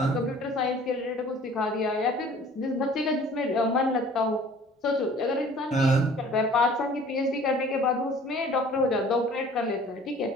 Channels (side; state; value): both; normal; correlation 0.50